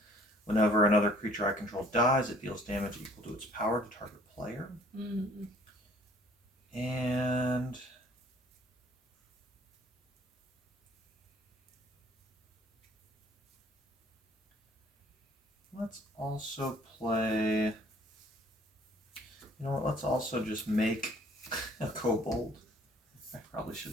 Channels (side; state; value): both; normal; correlation 0.56